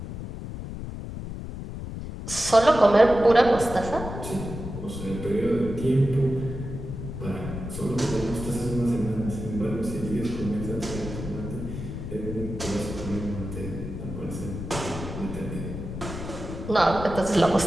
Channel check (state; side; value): noise; left; rumble, 8 dB below the sound